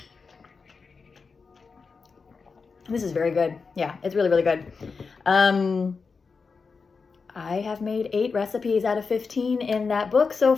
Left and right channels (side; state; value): right; quieter; 4.9 dB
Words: This is very good. Yeah, it's really good. I have made 8 recipes out of 15 in that book so